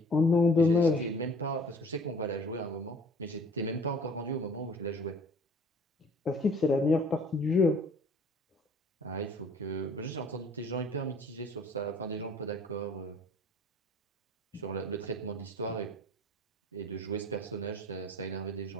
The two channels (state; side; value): normal; both; correlation 0.51